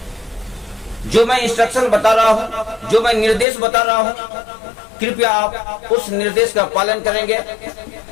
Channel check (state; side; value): drops out; right; at 3.5 s